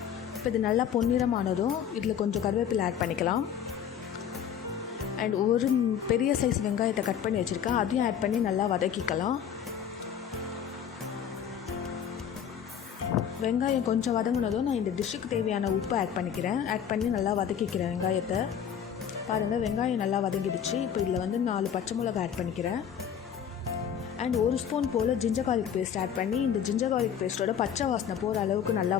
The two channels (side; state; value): right; quieter; 8.5 dB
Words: இப்போ இது நல்லா பொன்னிறமானதும் இதில் கொஞ்சம் கருவேப்பிலை ஆட் பண்ணிக்கலாம். அண்ட் ஒரு பெரிய சைஸ் வெங்காயத்தை கட் பண்ணி வச்சுருக்கேன், அதையும் ஆட் பண்ணி நல்லா வதக்கிக்கலாம். வெங்காயம் கொஞ்சம் வதங்கினதும் நான் இந்த டிஷ்ஷுக்கு தேவையான உப்பு ஆட் பண்ணிக்கிறேன். ஆட் பண்ணி நல்லா வதக்கிக்கிறேன் வெங்காயத்தை. பாருங்கள், வெங்காயம் நல்லா வதங்கிடுச்சு. இப்போ இதில் வந்து 4 பச்சை மிளகாய் ஆட் பண்ணிக்கிறேன். அண்ட் 1 ஸ்பூன் போல் ஜிஞ்சர் கார்லிக் பேஸ்ட் ஆட் பண்ணி இந்த ஜிஞ்சர் கார்லிக் பேஸ்ட்டோட பச்சை வாசனை போகிற அளவுக்கு நல்லா